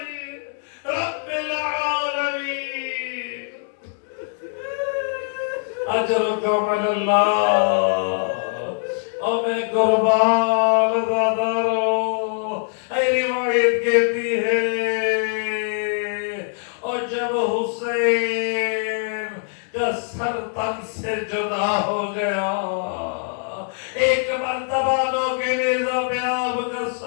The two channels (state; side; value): silent; right; 64 dB below the other